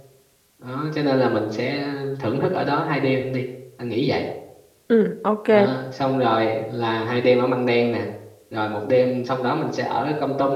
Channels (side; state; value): both; identical; correlation 1.00